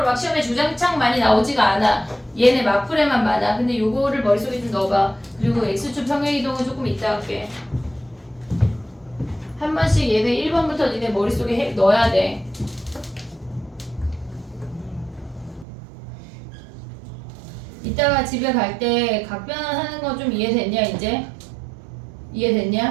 막 시험에 주장창 많이 나오지가 않아. 얘네 막풀에만 많아. 근데 요거를 머릿속에 좀 넣어봐. 그리고 x축 평행이동은 조금 이따 할게. 한 번씩 얘네 1번부터 니네 머릿속에 넣어야 돼. 이따가 집에 갈 때 각변하는 거 좀 이해됐냐 이제?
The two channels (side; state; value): left; drops out; at 15.7 s